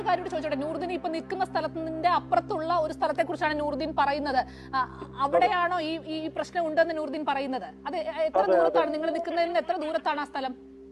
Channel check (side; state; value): both; identical; correlation 1.00